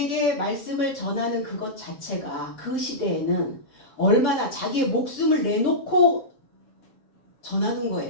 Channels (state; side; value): late; right; 6.9 ms